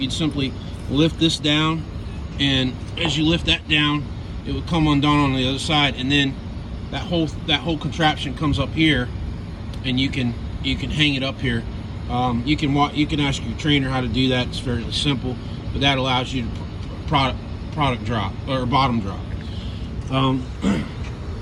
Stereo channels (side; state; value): both; identical; correlation 1.00